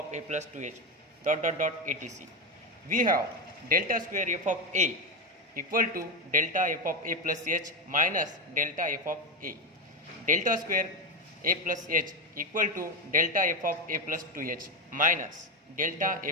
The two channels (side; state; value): both; normal; correlation 0.11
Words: a plus 2h dot etc. We have delta square f of a equal to delta f of a plus h minus delta f of a. Delta square a plus h equal to delta f of a plus 2h minus delta